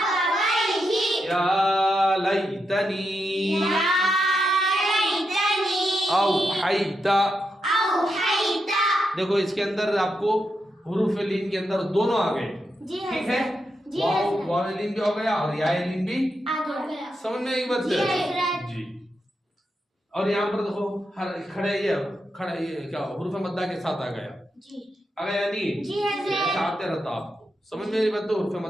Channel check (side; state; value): both; normal; correlation 0.85